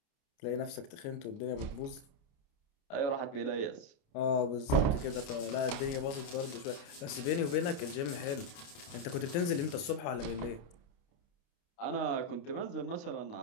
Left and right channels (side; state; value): right; late; 29 ms